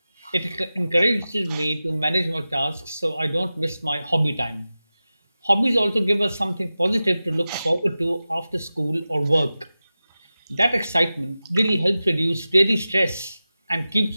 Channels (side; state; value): both; inverted; correlation -0.95